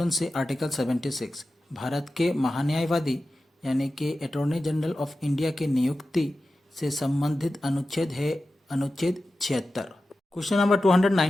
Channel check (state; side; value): normal; both; correlation 0.93